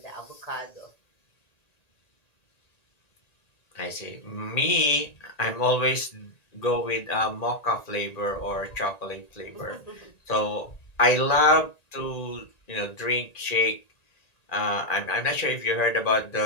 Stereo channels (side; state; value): right; late; 1.9 ms